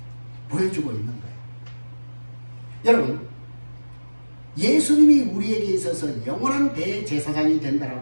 보여주고 있는 거예요. 여러분, 예수님이 우리에게 있어서 영원한 대제사장이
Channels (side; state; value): both; inverted; correlation -1.00